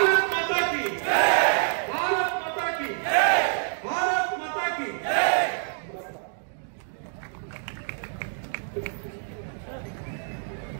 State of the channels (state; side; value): silent; left; 60 dB below the other